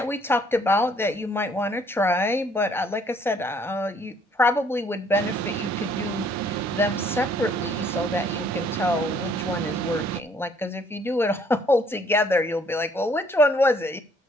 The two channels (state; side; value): normal; both; correlation 0.62